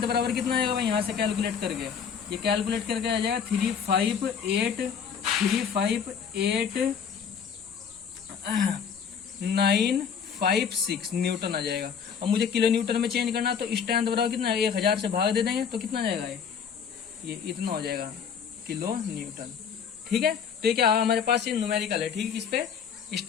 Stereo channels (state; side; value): quieter; right; 7.1 dB